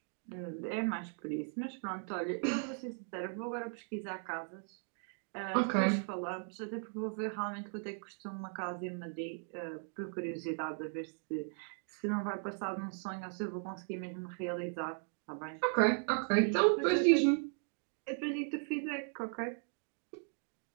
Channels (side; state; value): left; silent; 53 dB below the other